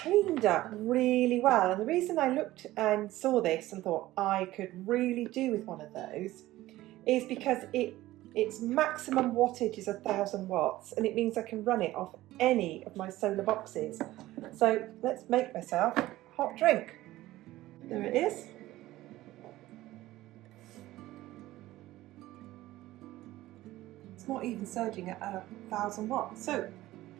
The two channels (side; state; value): left; quieter; 16.4 dB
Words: up really well, and the reason I looked and saw this and thought I could really do with one of those is because its maximum wattage is 1000 watts, and it means I can run it off any of my solar boxes. So let's make myself a hot drink. There it is. It's not even surging at 1000 watts. So